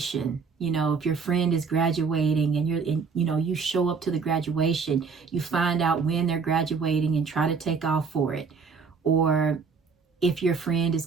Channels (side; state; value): left; quieter; 5.3 dB